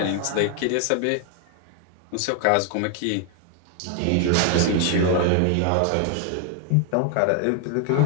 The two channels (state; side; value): different; both; correlation 0.01